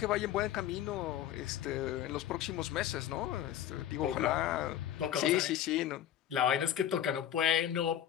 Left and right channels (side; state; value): right; quieter; 11.0 dB